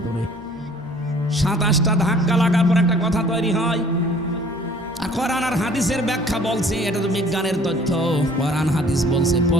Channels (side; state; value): both; normal; correlation 0.54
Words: 27টা ধাক্কা লাগার পর একটা কথা তৈরি হয়। আর কোরআন আর হাদিসের ব্যাখ্যা বলছে, এটা তো বিজ্ঞানের তথ্য। কোরআন হাদিস বলছে